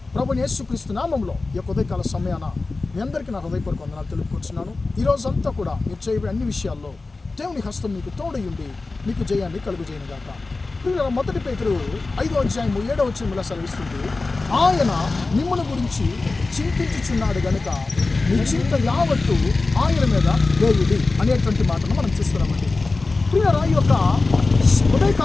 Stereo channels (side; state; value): right; quieter; 3.6 dB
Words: ప్రభువైన యేసుక్రీస్తు నామములో ఈ యొక్క ఉదయకాల సమయాన మీ అందరికీ నా హృదయపూర్వక వందనాలు తెలుపుకుంటున్నాను. ఈరోజంతా కూడా మీరు చేయబోయే అన్ని విషయాల్లో దేవుని హస్తం మీకు తోడయుండి మీకు జయాన్ని కలుగజేయనుగాక. ప్రియులారా, 1 పేతురు 5:7 సెలవిస్తుంది, ఆయన మిమ్మల్ని గురించి చింతించుచున్నాడు గనుక మీ చింత యావత్తు ఆయన మీద వేయుడి అనేటువంటి మాటను మనం చూస్తున్నామండి. ప్రియులారా, ఈ యొక్క